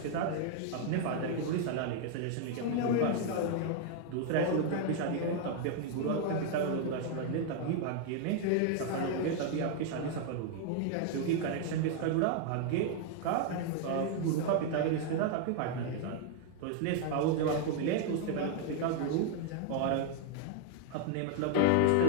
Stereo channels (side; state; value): both; different; correlation 0.00